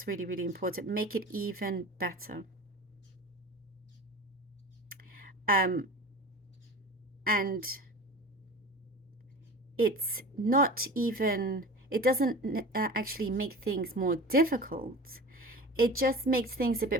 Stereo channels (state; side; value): normal; both; correlation 0.36